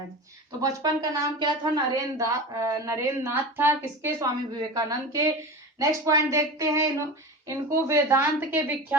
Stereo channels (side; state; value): both; normal; correlation 0.29